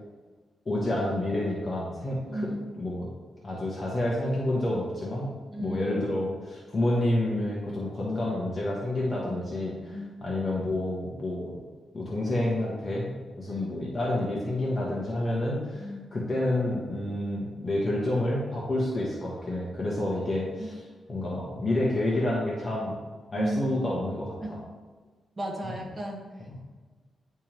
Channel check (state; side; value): normal; both; correlation 0.86